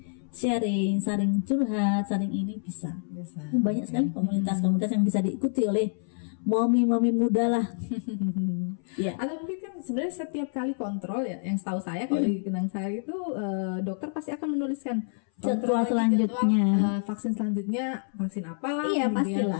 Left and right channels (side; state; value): right; silent; 60 dB below the other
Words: sharing, saling curhat, saling ini bisa. Biasa. Banyak sekali komunitas-komunitas yang bisa diikuti oleh mami-mami muda lah. Ya. Atau mungkin kan sebenarnya setiap kali kontrol ya, yang setahu saya kalau di Kenang Sari itu dokter pasti akan menuliskan jadwal selanjutnya. Vaksin selanjutnya vaksin apa, Iya, kemudian